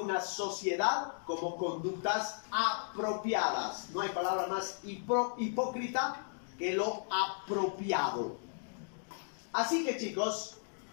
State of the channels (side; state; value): right; silent; digital silence